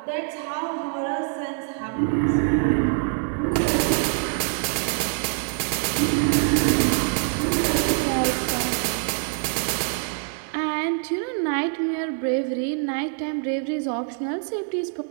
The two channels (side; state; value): left; silent; 56 dB below the other